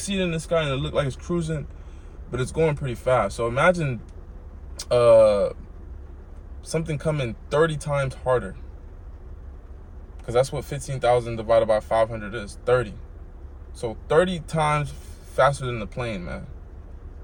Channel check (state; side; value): identical; both; correlation 1.00